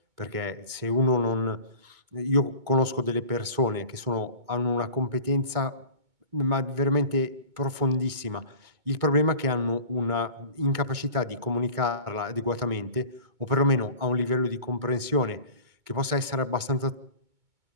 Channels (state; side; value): late; left; 2.2 ms